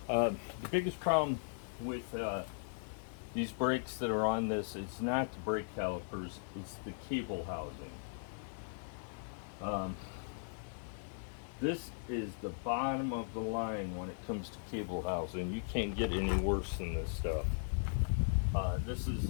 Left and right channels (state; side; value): silent; right; digital silence